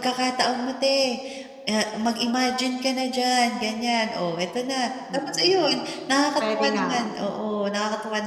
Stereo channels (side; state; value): both; identical; correlation 1.00